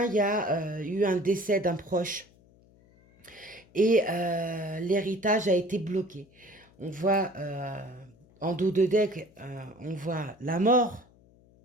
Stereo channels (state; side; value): noise; left; hum, 28 dB below the sound